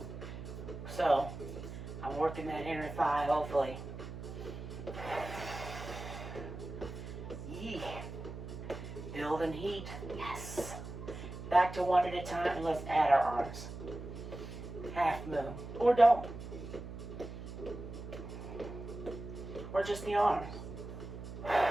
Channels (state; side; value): noise; right; hum, 9 dB below the sound